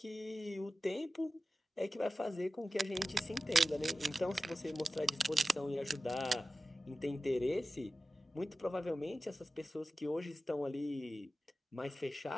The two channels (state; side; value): normal; both; correlation 0.94